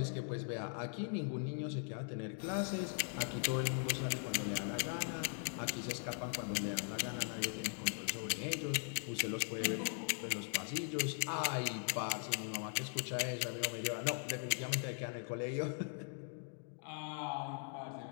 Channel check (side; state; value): right; silent; 51 dB below the other